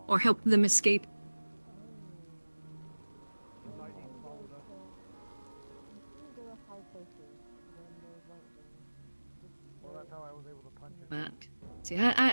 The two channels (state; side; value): inverted; both; correlation -1.00